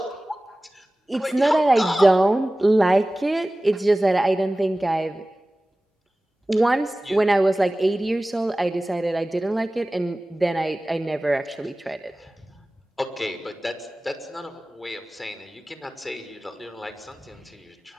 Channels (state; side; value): normal; both; correlation 0.97